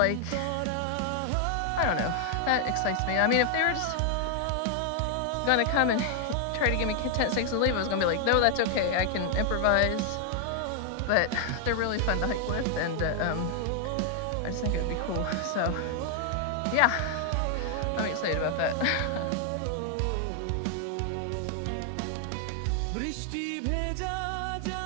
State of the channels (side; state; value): both; different; correlation 0.00